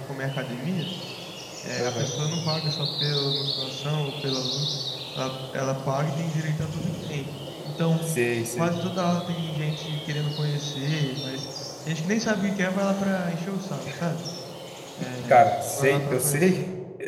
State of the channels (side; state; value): both; identical; correlation 1.00